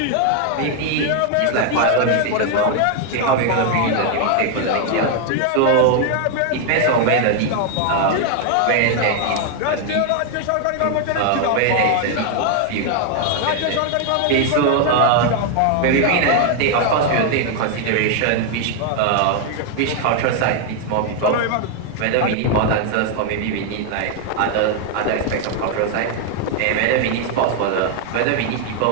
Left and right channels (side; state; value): both; different; correlation 0.00